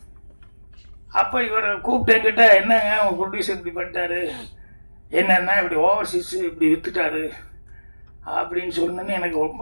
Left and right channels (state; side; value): inverted; both; correlation -1.00